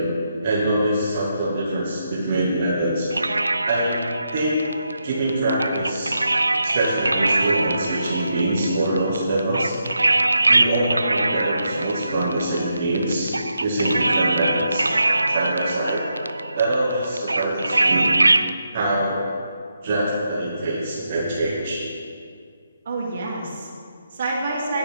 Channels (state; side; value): inverted; both; correlation -0.83